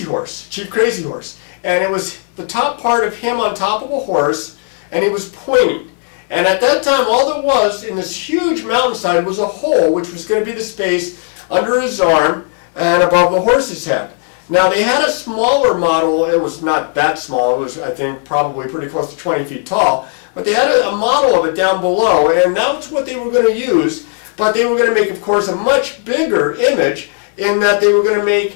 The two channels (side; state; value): right; silent; 56 dB below the other